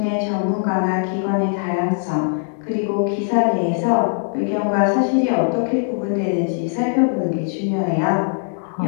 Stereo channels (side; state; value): right; silent; 64 dB below the other